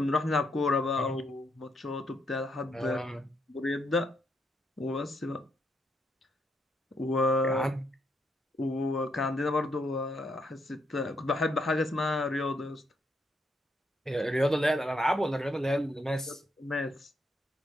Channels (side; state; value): both; normal; correlation 0.76